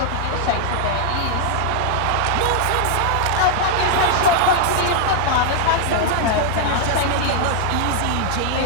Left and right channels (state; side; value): different; both; correlation -0.01